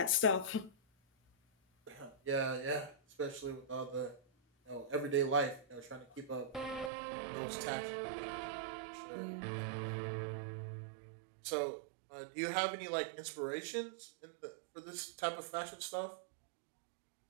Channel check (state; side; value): drops out; left; at 6.9 s